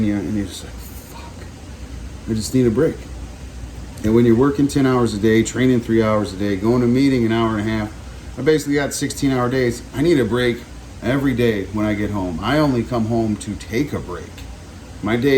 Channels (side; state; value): both; identical; correlation 1.00